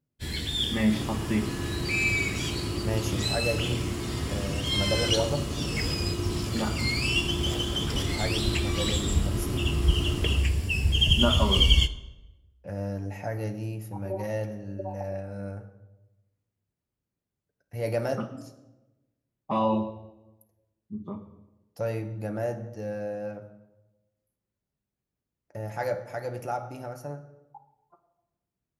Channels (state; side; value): identical; both; correlation 1.00